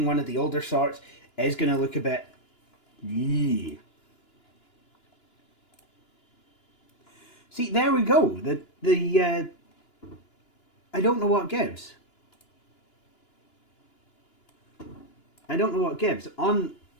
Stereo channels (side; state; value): right; late; 2.9 ms